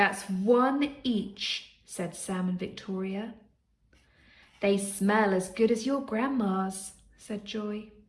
1 each," said Sam and Victoria. "They smell as good as your Grandma's," said Joy.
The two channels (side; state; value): both; identical; correlation 1.00